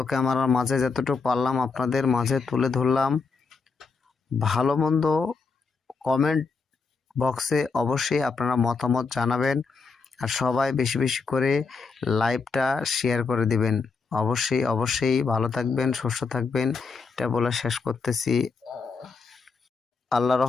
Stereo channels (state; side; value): quieter; right; 4.7 dB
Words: ক্যামেরার মাঝে যতটুকু পারলাম আপনাদের মাঝে তুলে ধরলাম। ভালো মন্দ কমেন্ট বক্সে অবশ্যই আপনারা মতামত জানাবেন। আর সবাই বেশি বেশি করে লাইভটা শেয়ার করে দিবেন। অবশ্যই ভালো থাকবেন, সুস্থ থাকবেন, এটা বলে শেষ করতেছি। আল্লাহ